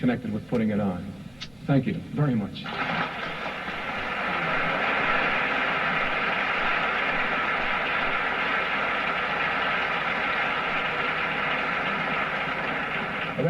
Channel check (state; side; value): noise; right; hum, 29 dB below the sound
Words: with putting it on. Thank you very much.